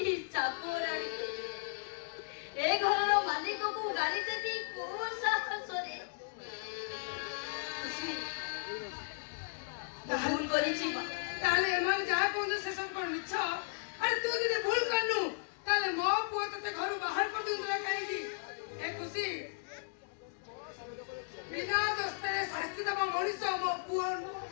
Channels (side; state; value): right; silent; digital silence